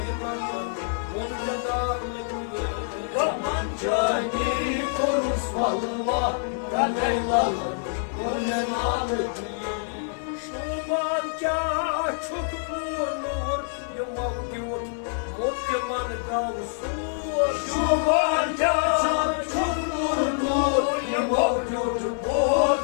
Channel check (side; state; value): right; silent; digital silence